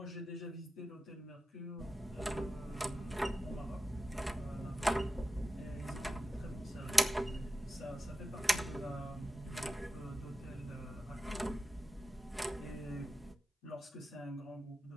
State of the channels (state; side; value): normal; both; correlation 0.93